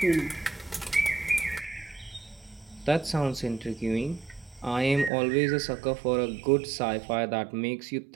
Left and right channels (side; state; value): left; drops out; at 5.1 s